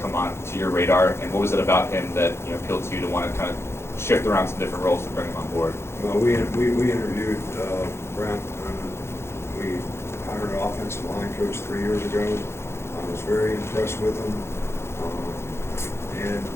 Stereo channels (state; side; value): late; right; 0.12 ms